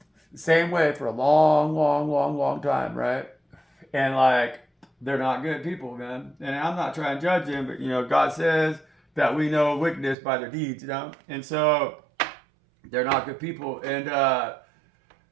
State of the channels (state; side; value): drops out; left; at 10.2 s